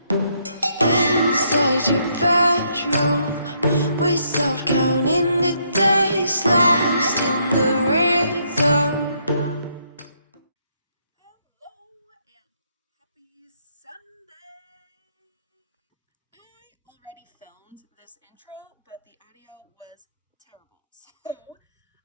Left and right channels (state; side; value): inverted; both; correlation -0.72